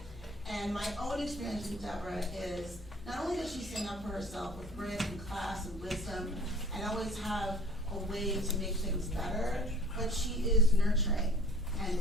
And my own experience with Deborah is, not only does she stand up for herself with grit and class and wisdom, and always have a way to make things better, but she is nurturing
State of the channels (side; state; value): both; normal; correlation 0.49